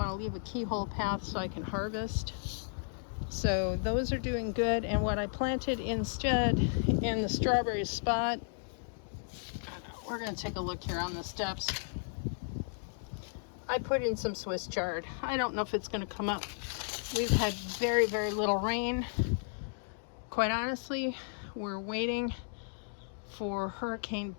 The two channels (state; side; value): silent; right; digital silence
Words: to leave a keyhole path so I can harvest. So those are doing good. And what I planted instead in the strawberry spot, we're going to take a look here on the steps. I put in some Swiss chard. I don't know if it's going to come up. We've had very, very little rain. Quite honestly, we're waiting for Hurricane